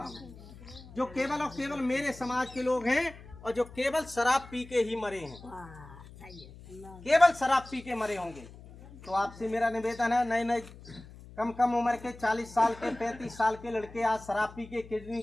हूँ, जो केवल और केवल मेरे समाज के लोग हैं और जो केवल शराब पी के ही मरे हैं, केवल शराब पी के मरे होंगे। तो आपसे मेरा निवेदन है, नए नए कम उम्र के 40 साल के 35 साल के लड़के आज शराब पी के किडनी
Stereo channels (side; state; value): left; noise; hum, 18 dB below the sound